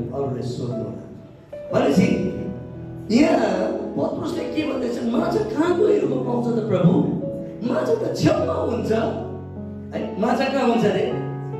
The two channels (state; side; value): identical; both; correlation 1.00